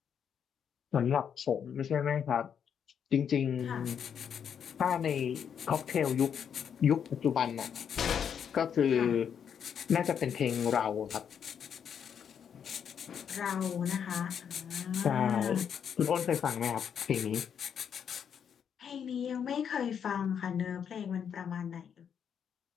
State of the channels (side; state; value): right; quieter; 7.9 dB